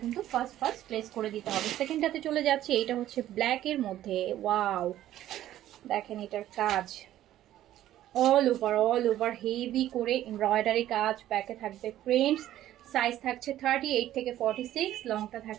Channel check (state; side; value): quieter; left; 13.0 dB